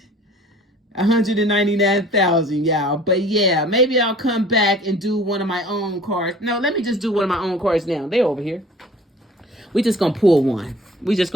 199,000, y'all. But yeah, maybe I'll come back and do one of my own cards. No, let me just do one of my own cards now. They're over here. We just gonna pull one. We just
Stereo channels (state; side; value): normal; both; correlation 0.48